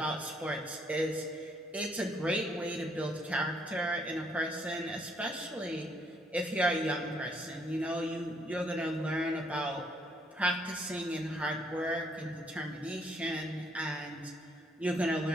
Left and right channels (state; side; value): normal; both; correlation 0.69